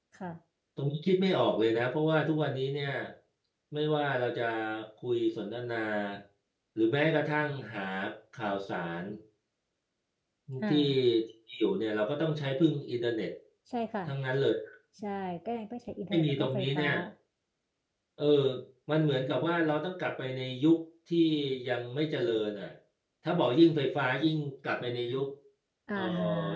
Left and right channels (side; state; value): both; identical; correlation 1.00